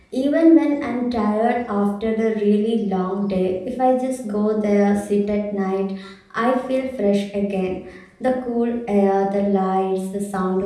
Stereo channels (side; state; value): both; identical; correlation 1.00